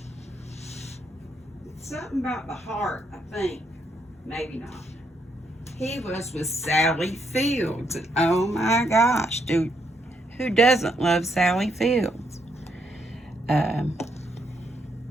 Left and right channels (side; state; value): both; normal; correlation 0.76